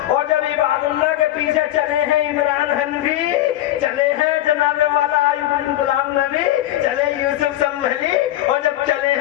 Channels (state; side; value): quieter; right; 13.9 dB